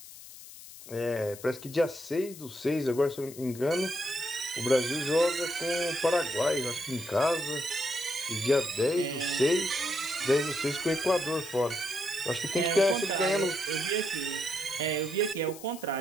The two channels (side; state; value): left; noise; hiss, 16 dB below the sound